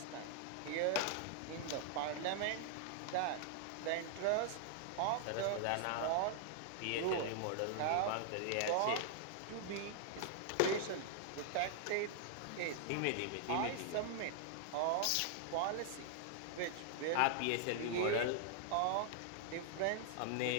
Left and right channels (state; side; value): different; both; correlation 0.00